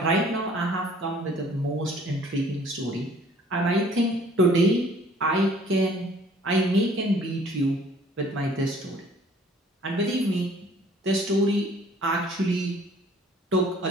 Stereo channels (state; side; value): normal; both; correlation 0.55